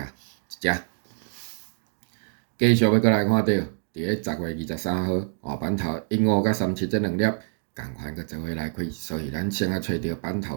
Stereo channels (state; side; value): silent; left; digital silence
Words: 一只。继续要搁来看到，伫咧10月23号，版头15甲37这两粒共款搁做伙来开，所以咱先来找到版